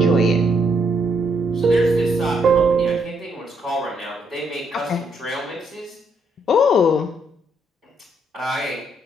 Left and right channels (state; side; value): normal; both; correlation 0.73